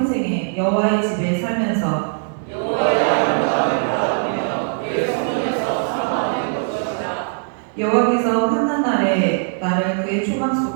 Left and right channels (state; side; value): silent; left; 66 dB below the other